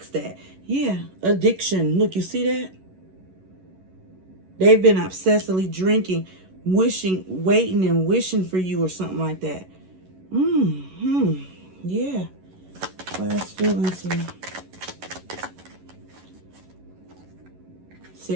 that. Yeah, addiction. Look, you see that? They've been obsessively drinking, waiting and wishing for you or something like that. Yeah. Last feelings here.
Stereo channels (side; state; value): left; late; 11 ms